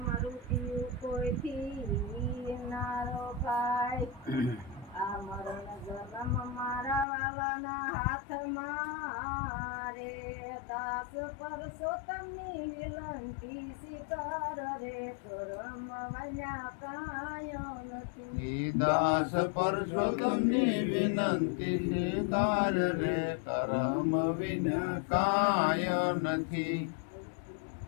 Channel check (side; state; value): right; drops out; at 7.1 s